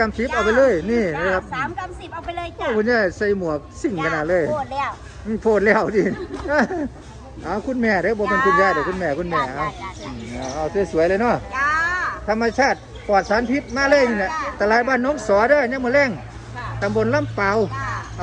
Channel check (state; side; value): identical; both; correlation 1.00